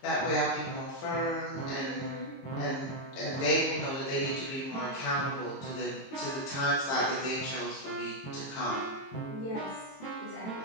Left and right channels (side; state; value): right; late; 22 ms